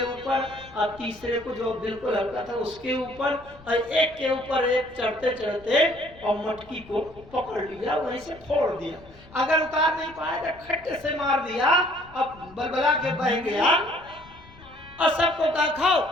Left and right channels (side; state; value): left; noise; rumble, 23 dB below the sound